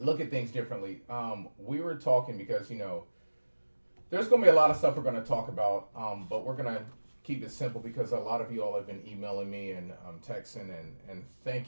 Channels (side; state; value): both; inverted; correlation -1.00